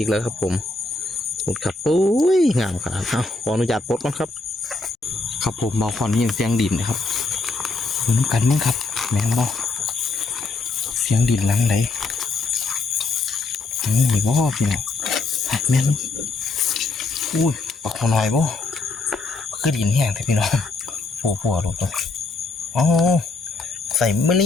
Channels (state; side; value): quieter; right; 3.6 dB